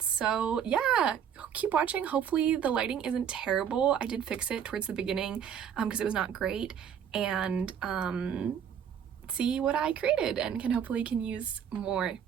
so yeah, keep watching. Hopefully the lighting isn't terrible. I did fix it towards the beginning because it was not great, and see what I created and hopefully can use more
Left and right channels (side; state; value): left; quieter; 8.4 dB